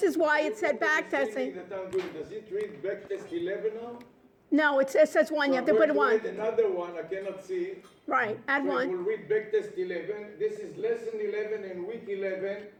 is why it said backtesting. Does it read backtest 11 now? No, it says 1. You have to put I'm one. going to add another one. I cannot see. Right, add So it one. will read backtest 11. This is lesson 11 and week 11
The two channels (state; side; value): identical; both; correlation 1.00